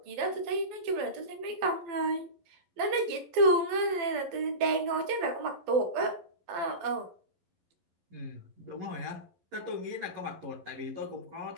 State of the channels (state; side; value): late; left; 11 ms